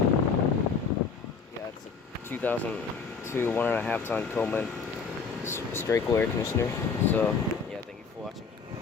Yeah, it's a 2002 1.5 ton Coleman straight cool air conditioner. So yeah, thank you for watching.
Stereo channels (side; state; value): right; quieter; 5.4 dB